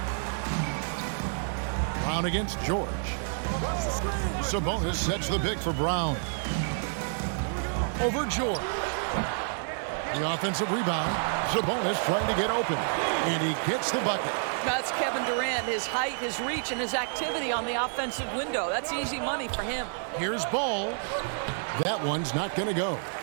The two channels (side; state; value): left; silent; digital silence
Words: Brown against George. Sabonis sets the pick for Brown. Over George. The offensive rebound. Sabonis trying to get open. And he gets the bucket. That's Kevin Durant, his height, his reach, and his activity on the offensive window. That's easy money for him. Here's Ball. That one's not going to go.